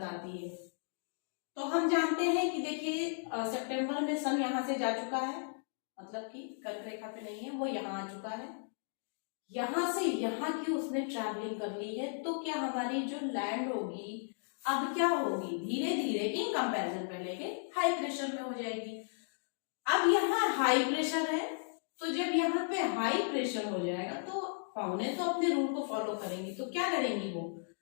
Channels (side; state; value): right; silent; digital silence